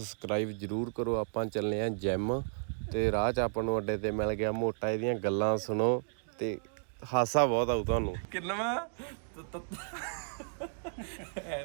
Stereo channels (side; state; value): left; silent; digital silence